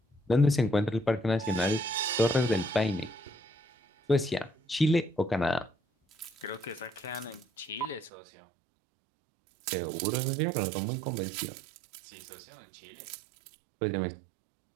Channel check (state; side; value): drops out; left; at 8.1 s